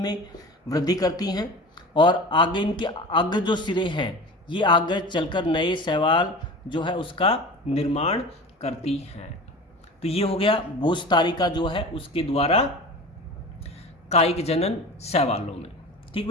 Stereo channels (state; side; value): normal; both; correlation 0.35